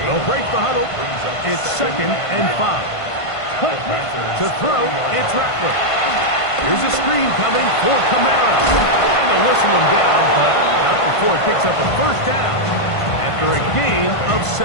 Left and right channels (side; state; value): right; late; 1.5 ms